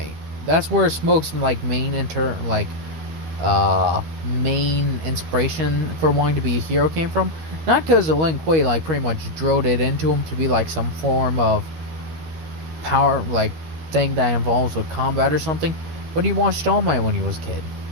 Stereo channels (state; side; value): late; left; 13 ms